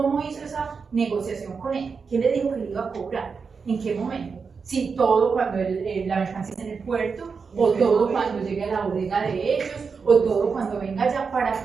hizo esa negociación con él? ¿Qué le dijo que le iba a cobrar? ¿En qué momento? Si todo cuando la mercancía está en el puerto, o todo cuando llegue a la bodega de ellos, o todo cuando venga ya, para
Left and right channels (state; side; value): quieter; left; 5.3 dB